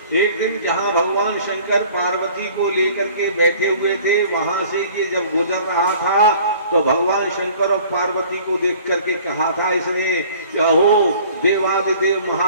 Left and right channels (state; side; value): inverted; both; correlation -0.50